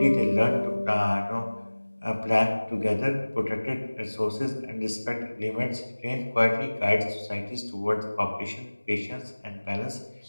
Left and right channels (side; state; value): both; inverted; correlation -1.00